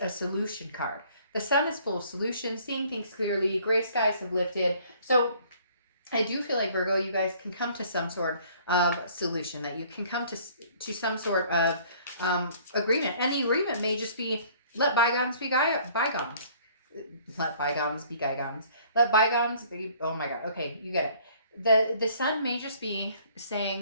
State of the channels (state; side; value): inverted; both; correlation -0.57